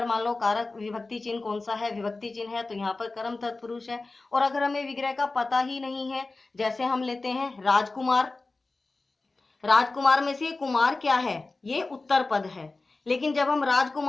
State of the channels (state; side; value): quieter; right; 3.4 dB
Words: मान लो कारक विभक्ति चिन्ह कौन सा है, विभक्ति चिन्ह है, तो यहाँ पर कर्म तत्पुरुष है। और अगर हमें विग्रह का पता ही नहीं है, जैसे हम लेते हैं राजकुमार, राजकुमार में से कुमार क्या है, ये उत्तर पद है, लेकिन जब हम